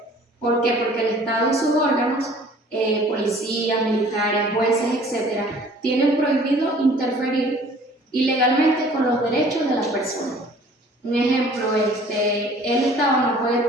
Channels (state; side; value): normal; both; correlation 0.52